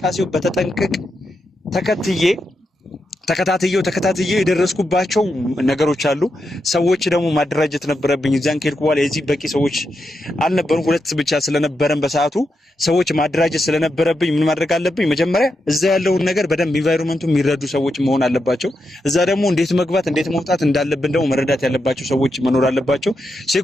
በተጠንቀቅ ተከታትዬው የደረስኩባቸው ነገሮች አሉ። ሰዎች ደግሞ ማደራጀት ነበረብኝ። እዛን ከሄድኩ በኋላ የዚህ በቂ ሰዎች አልነበሩም፣ 2 ብቻ ስለነበረን በሰዓቱ ሰዎች ማደራጀት ስለነበረብኝ ምን ማድረግ አለብኝ? መጀመሪያ እዛ ያለውን ነገር በደንብ ኢንቫይሮንመንቱ የሚረዱ ሰዎች መሆን አለባቸው። እዛ ደግሞ እንዴት መግባት እንዴት መውጣት እንዳለብን ደግሞ መረዳት ያለባቸው ሰዎች መኖር አለባቸው።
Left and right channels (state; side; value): normal; both; correlation 0.86